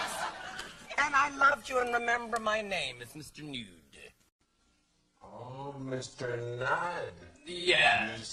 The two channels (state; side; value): identical; both; correlation 1.00